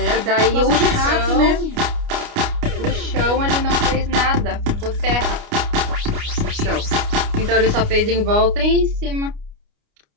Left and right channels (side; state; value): left; late; 29 ms